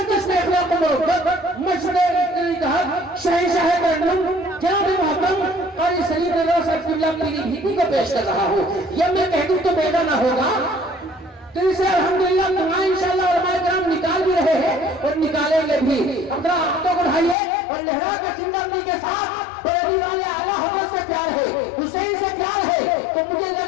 میں اخلاق و محبت, مشہور اتحاد, شہنشاہ ترنم جناب محترم قاری سلیم رضا صاحب قبلہ پیری بھیٹی کو پیش کر رہا ہوں. یہ میں کہہ دوں تو بیٹا نہ ہوگا, تو اسے الحمدللہ دعائیں انشاءاللہ علماء کرام نکال بھی رہے ہیں اور نکالیں گے بھی. اپنا ہاتھوں کو اٹھائیے اور لہرا کے زندگی کے ساتھ پیری والے اعلیٰ حضرت سے پیار ہے, حسین سے پیار ہے, تو مجھے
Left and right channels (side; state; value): right; drops out; at 17.4 s